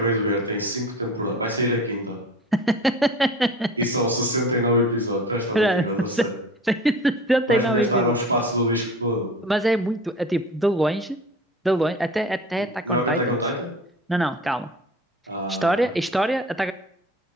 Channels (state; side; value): normal; both; correlation 0.39